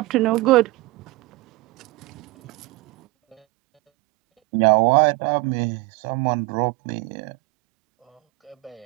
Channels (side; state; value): left; quieter; 22.1 dB